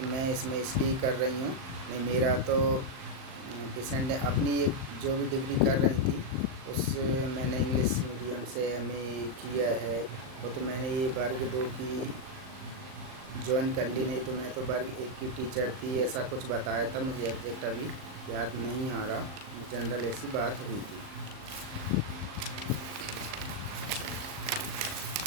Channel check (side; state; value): left; late; 38 ms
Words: मैं इसमें इसलिए कर रही हूँ। नहीं, मेरा तो पेशेंट ने अपनी एक जो भी डिग्री कर रही थी उस मैंने इंग्लिश मीडियम से एमए किया है। वो तो मैंने ये वर्ग 2 की ज्वाइन कर ली, नहीं तो मैं तो वर्ग 1 की टीचर थी, ऐसा कुछ बताया था। मुझे एग्जैक्ट अभी याद नहीं आ रहा, जनरल ऐसी बात हुई थी।